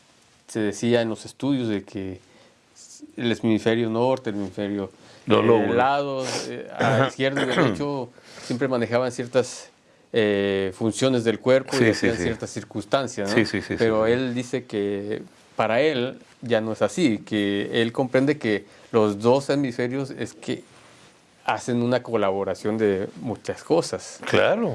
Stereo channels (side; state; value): both; identical; correlation 1.00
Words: decía en los estudios, de que el hemisferio norte, el hemisferio Los lóbulos. lados, a izquierdo y derecho, siempre manejaban ciertas funciones del cuerpo y Sí, sí, hacían sí. ciertas circunstancias, ¿no? Sí. Pero él dice que para él ya no es así, que él comprende que los dos hemisferios es que hacen una colaboración de muchas cosas.